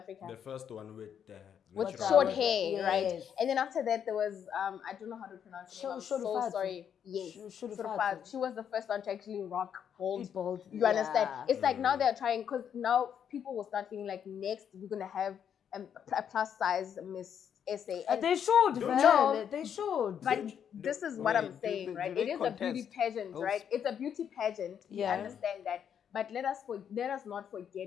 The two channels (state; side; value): quieter; right; 8.4 dB